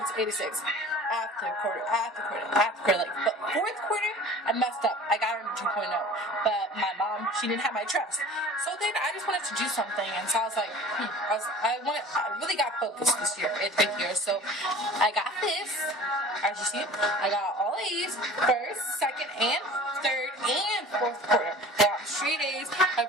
after quarter. But 4th quarter, I messed up. I got her 2.0. But my mom, she didn't have my trust. So then I just wanted to do something, and so I was like, I really got focused this year, 8th year. So I got this. As you see, I got all A's, 1st, 2nd, and 3rd, and 4th quarter. I got straight A's. I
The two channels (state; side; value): normal; both; correlation 0.43